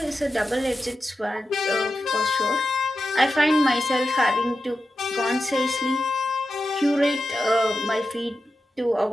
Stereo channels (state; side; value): normal; both; correlation 0.91